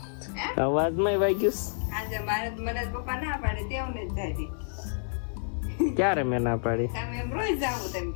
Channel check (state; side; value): silent; right; 59 dB below the other